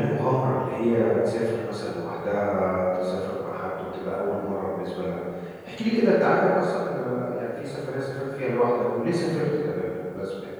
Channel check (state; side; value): identical; both; correlation 1.00